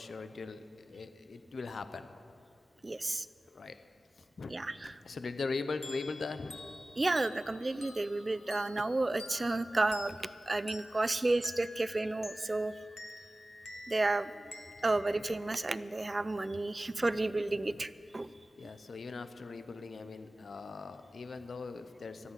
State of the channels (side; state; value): both; normal; correlation 0.97